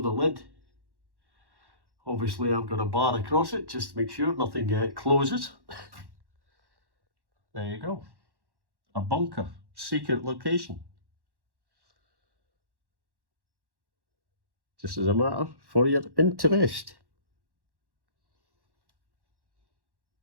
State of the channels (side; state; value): left; late; 1.1 ms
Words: lid. Obviously I've got a bar across it just to make sure nothing closes. There you go. A bunker, secret location. just as a matter for your interest.